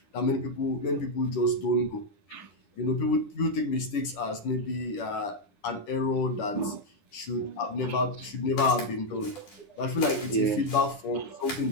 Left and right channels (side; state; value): right; late; 10 ms